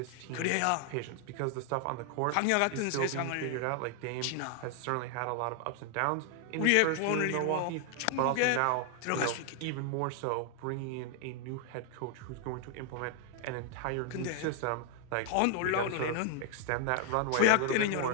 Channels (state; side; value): different; both; correlation 0.00